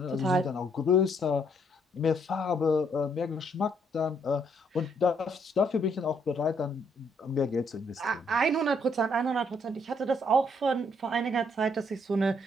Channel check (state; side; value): normal; both; correlation 0.70